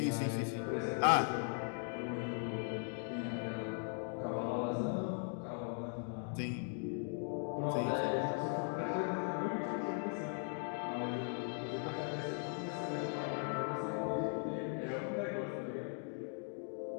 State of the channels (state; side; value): silent; right; 52 dB below the other